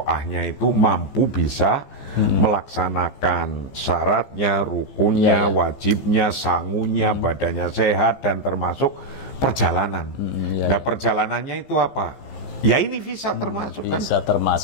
itu mampu bisa melaksanakan syaratnya, rukunnya, wajibnya, sangunya, badannya sehat dan termasuk perjalanan. Nah, perjalanannya itu apa? Ya ini visa termasuk kan? Visa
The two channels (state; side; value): late; right; 15 ms